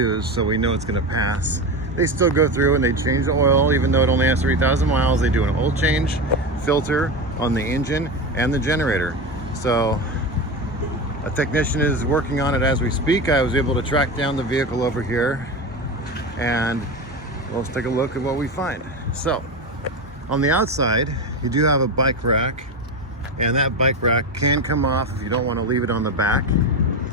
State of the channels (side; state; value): both; normal; correlation 0.21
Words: so we know it's gonna pass, they still go through and they change the oil. Even though it only has 3,000 miles, they do an oil change, filter on the engine and the generator. So a technician is working on it as we speak. I was able to track down the vehicle over here, and let's take a look at what we find. So on the outside, you do have a bike rack, and that bike rack can come off if you don't want to leave it on the back.